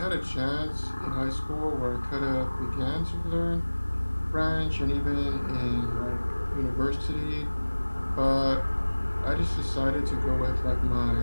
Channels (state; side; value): inverted; both; correlation -1.00